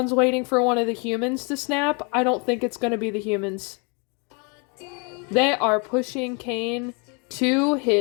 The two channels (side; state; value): right; quieter; 32.8 dB